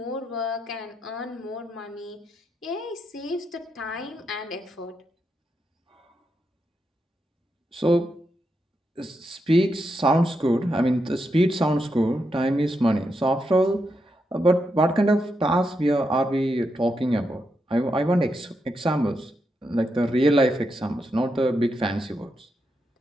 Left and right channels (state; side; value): normal; both; correlation 0.84